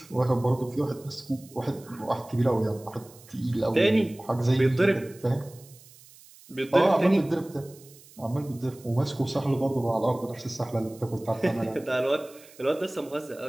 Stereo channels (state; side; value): noise; right; hiss, 23 dB below the sound